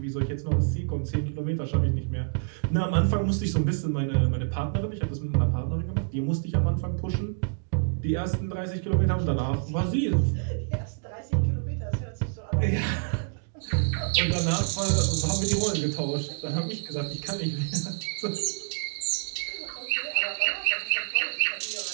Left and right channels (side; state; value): left; silent; digital silence